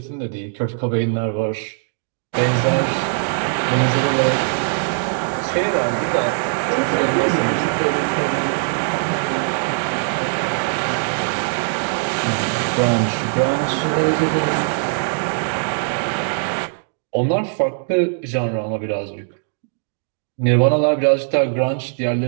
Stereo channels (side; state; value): left; silent; digital silence